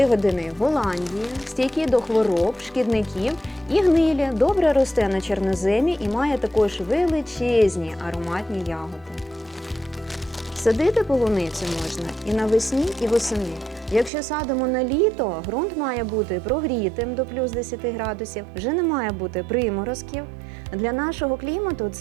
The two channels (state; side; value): drops out; left; at 14.1 s